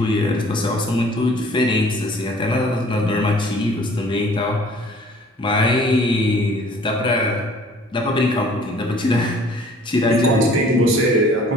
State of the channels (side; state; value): both; normal; correlation 0.53